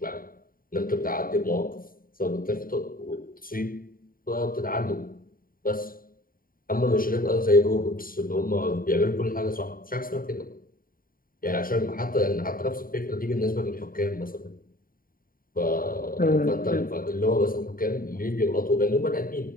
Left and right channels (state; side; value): late; right; 0.41 ms